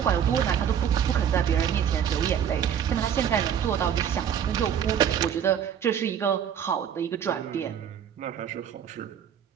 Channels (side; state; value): left; quieter; 8.8 dB